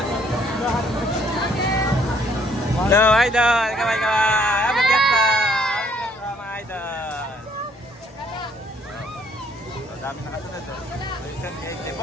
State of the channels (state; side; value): normal; both; correlation 0.65